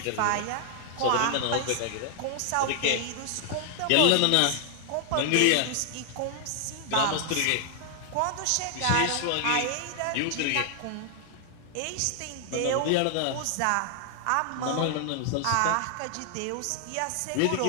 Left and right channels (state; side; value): different; both; correlation 0.00